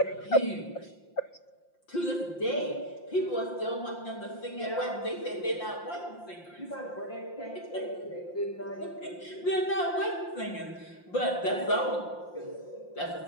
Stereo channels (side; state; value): right; late; 5.7 ms